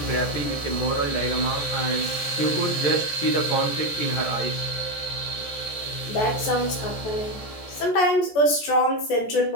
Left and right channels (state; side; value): late; right; 14 ms